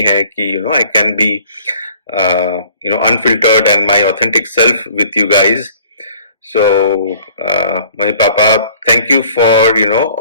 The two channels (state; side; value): inverted; both; correlation -0.52